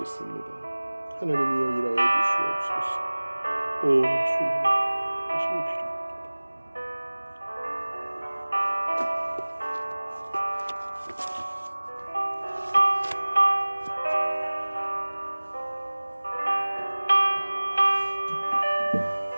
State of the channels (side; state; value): both; inverted; correlation -1.00